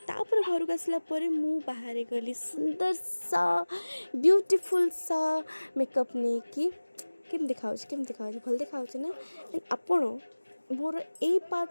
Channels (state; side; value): inverted; both; correlation -1.00